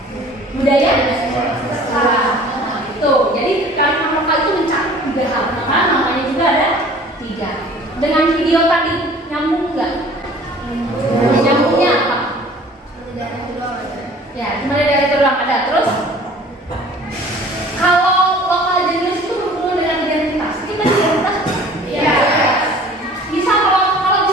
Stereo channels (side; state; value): both; normal; correlation 0.49